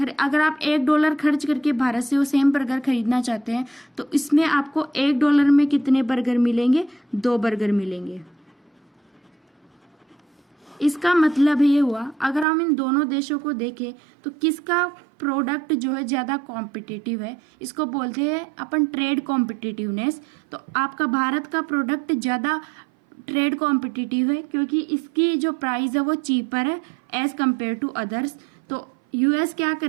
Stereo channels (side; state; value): left; drops out; at 12.5 s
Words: अगर आप $1 खर्च करके भारत से वो सेम बर्गर खरीदना चाहते हैं तो इसमें आपको $1 में कितने बर्गर मिलेंगे? 2 बर्गर मिलेंगे। इसका मतलब ये हुआ, अगर हम इन दोनों देशों को देखें तो किसका प्रोडक्ट जो है ज़्यादा कॉम्पिटिटिव है, इसको बोलते हैं अपन ट्रेड कॉम्पिटिटिवनेस। तो आपका भारत का प्रोडक्ट ज़्यादा ट्रेड कॉम्पिटिटिव है क्योंकि इसकी जो प्राइस है वो चीपर है एज कम्पेयर टू अदर्स। तो यूएस क्या